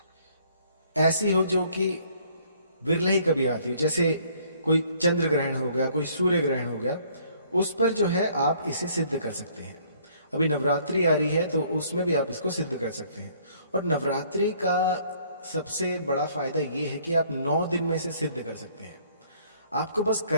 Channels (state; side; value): inverted; both; correlation -0.61